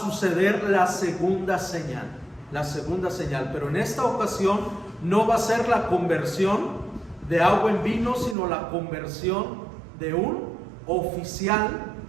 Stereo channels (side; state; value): left; drops out; at 8.3 s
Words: la segunda señal, pero en esta ocasión no va a ser la conversión de agua en vino, sino la conversión de un oficial,